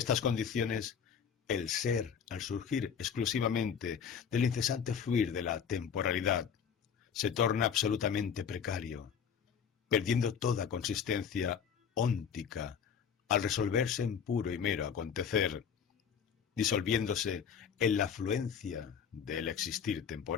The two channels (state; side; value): quieter; right; 7.3 dB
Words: condiciones, el ser, al surgir exclusivamente del incesante fluir de la temporalidad, se torna absolutamente precario, perdiendo toda consistencia óntica al resolverse en puro y mero acontecer, disolviéndose en la fluencia del existir